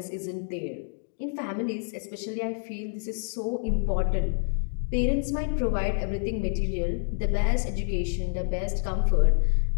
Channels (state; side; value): silent; right; digital silence